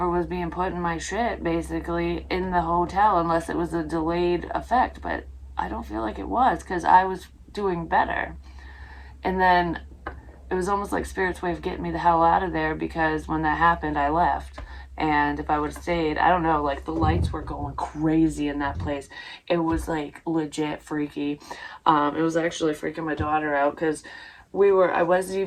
was being put in my shit, basically, in the hotel, unless it was a delayed effect. But I don't feel like it was, because I was doing better. And then it was almost like Spirit's way of getting me the hell out of there, because when that happened, I left. And if I would have stayed, I don't know, like, the lights were going crazy in that place. It was, like, legit freaky. It was actually freaking my daughter out, because I wasn't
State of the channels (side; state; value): both; identical; correlation 1.00